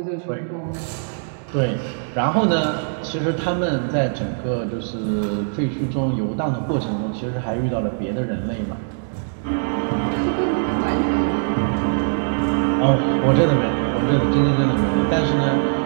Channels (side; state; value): left; silent; digital silence